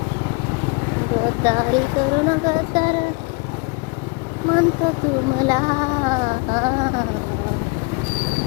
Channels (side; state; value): right; quieter; 31.3 dB